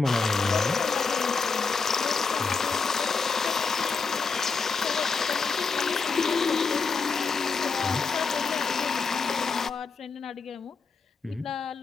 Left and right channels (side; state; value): right; quieter; 4.9 dB